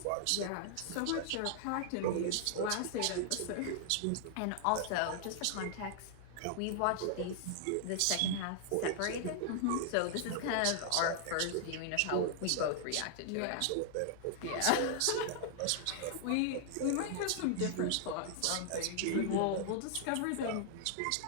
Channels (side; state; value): both; different; correlation -0.01